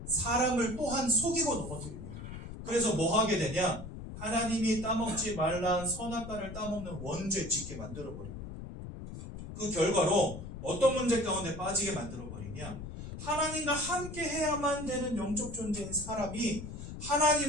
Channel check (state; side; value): noise; left; rumble, 10 dB below the sound